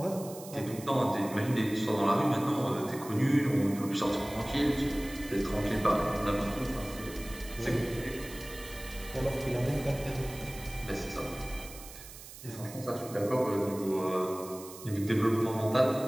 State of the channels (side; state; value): right; noise; hiss, 15 dB below the sound